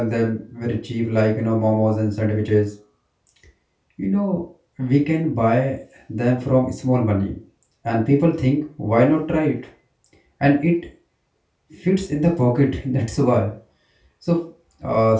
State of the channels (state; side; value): identical; both; correlation 1.00